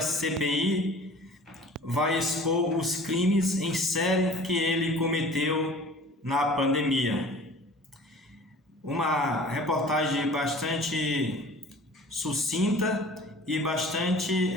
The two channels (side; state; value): both; normal; correlation 0.45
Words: CPI vai expor os crimes em série que ele cometeu na pandemia. Uma reportagem bastante sucinta e bastante